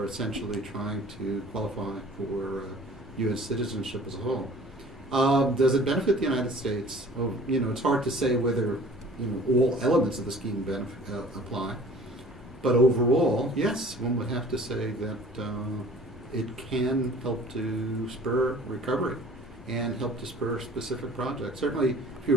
essentially trying to qualify for U.S. citizenship as a whole. Does it benefit the United States? Oh, it's hard to say whether all elements of the scheme apply, but overall, yes, one would have to say that it can help to spur recovery and help to spur specific projects. Certainly, if you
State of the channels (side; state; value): both; normal; correlation 0.48